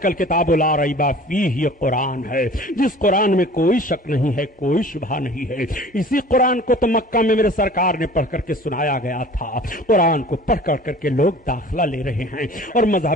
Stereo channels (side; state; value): both; normal; correlation 0.45